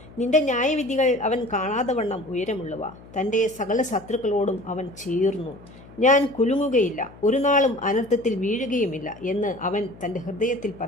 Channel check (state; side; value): noise; left; hum, 21 dB below the sound